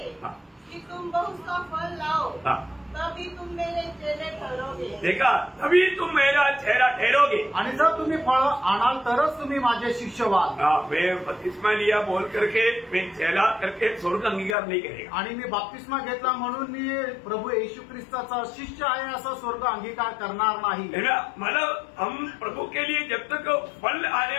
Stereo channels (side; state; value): right; drops out; at 14.6 s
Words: हाँ। कि तुम बहुत सा फल लाओ, हाँ। तभी तुम मेरे चेले ठहरोगे। देखा, तभी तुम मेरा चेहरा ठहरोगे। आणि जर तुम्ही फळ आणाल तरच तुम्ही माझे शिष्य व्हाल। मैं बपतिस्मा लिया बोल करके मैं चेला करके स्वर्ग अंगीकार नहीं करेगा, आणि मी बाप्तिस्मा घेतला म्हणून मी प्रभु येशू ख्रिस्ताचा शिष्य आहे असा स्वर्ग अंगीकार करणार नाही। है ना, मतलब हम प्रभु के लिए जब तक फल आने